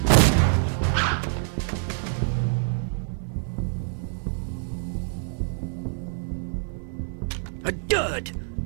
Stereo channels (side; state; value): left; silent; digital silence